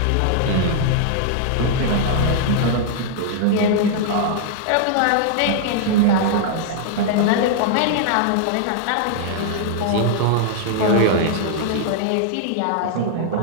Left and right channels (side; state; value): both; different; correlation -0.01